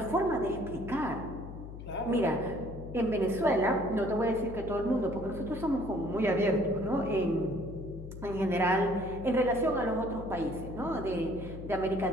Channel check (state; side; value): noise; left; hum, 11 dB below the sound